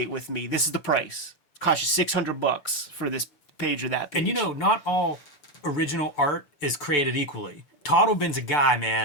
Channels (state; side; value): late; right; 6.9 ms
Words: with me. This is the price. Cost you $600 for this page or that page. And you know, not all original art is created equally. Totlben's a guy,